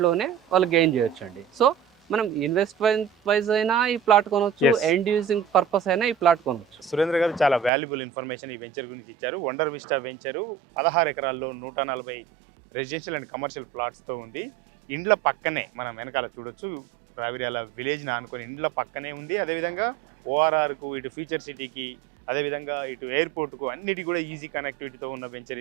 వాళ్ళు గెయిన్ చేయొచ్చు అండి. సో మనం ఇన్వెస్ట్మెంట్ వైజ్ అయినా ఈ ప్లాట్ కొనవచ్చు, ఎండ్ యూజింగ్ పర్పస్ అయినా ఈ ప్లాట్ కొనవచ్చు. సురేంద్ర గారు చాలా వాల్యుబుల్ ఇన్ఫర్మేషన్ ఈ వెంచర్ గురించి ఇచ్చారు. వండర్ విస్టా వెంచరు 16 ఎకరాల్లో 140 రెసిడెన్షియల్ అండ్ కమర్షియల్ ప్లాట్స్తో ఉంది. ఇండ్ల పక్కనే మనం వెనకాల చూడొచ్చు, రావిర్యాల విలేజ్ని ఆనుకొని ఇండ్ల పక్కనే ఉంది. అదేవిధంగా ఓఆర్ఆర్కు, ఇటు ఫ్యూచర్ సిటీకి అదేవిధంగా ఇటు ఎయిర్పోర్ట్కు అన్నిటి కూడా ఈజీ కనెక్టివిటీతో ఉన్న వెంచర్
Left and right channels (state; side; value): drops out; left; at 7.7 s